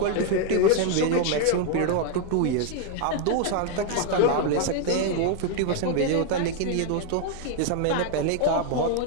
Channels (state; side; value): different; both; correlation 0.01